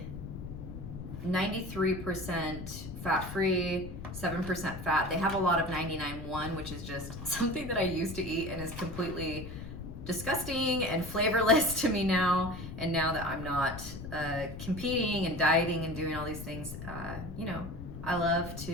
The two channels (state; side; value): noise; left; rumble, 9 dB below the sound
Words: 93% fat-free, 7% fat. They have a lot of 99.1, which is just something that I used to eat and is completely disgusting and flavorless to me now. And now that I'm not competing and dieting and doing all these things, you know, I love